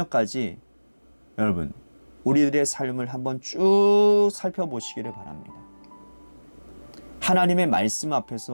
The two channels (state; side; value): inverted; both; correlation -1.00